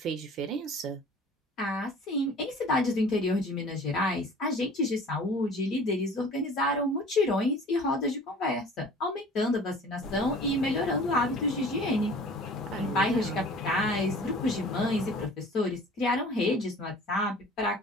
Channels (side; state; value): both; normal; correlation 0.46